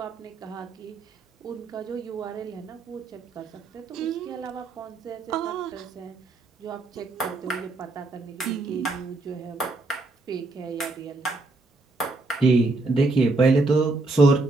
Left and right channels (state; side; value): quieter; left; 3.2 dB